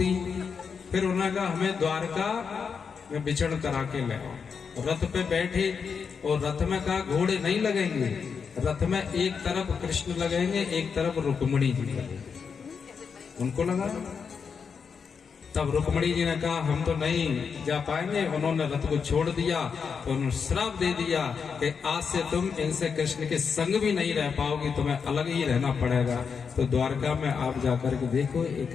फिर उन्होंने कहा हमें द्वारका में विचरण करा के ले आओ। रथ पे बैठे और रथ में कहा घोड़े नहीं लगेंगे, रथ में एक तरफ कृष्ण लगेंगे एक तरफ रुक्मणी जी लगेंगे। उनको लगा, तब रुक्मणी जी ने कहा हम तो नहीं जा पाएंगे। उन्होंने रथ को छोड़ दिया तो उन्होंने श्राप दे दिया कि आज से तुम इनसे कृष्ण के संग भी नहीं रह पाओगी, तुम्हें अलग ही रहना पड़ेगा। तो द्वारका में आप जाकर के देखो एक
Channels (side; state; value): right; quieter; 6.0 dB